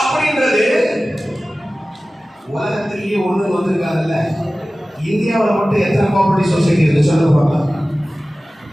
சொன்னாங்கல்ல, இந்தியாவில் மட்டும் எத்தனை கோஆபரேட்டிவ் சொசைட்டி இருக்கு சொல்லுங்க பார்க்கலாம்.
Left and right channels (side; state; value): both; normal; correlation 0.97